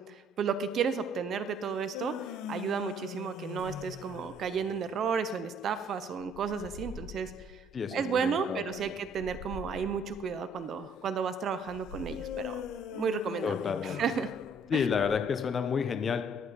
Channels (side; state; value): both; normal; correlation 0.61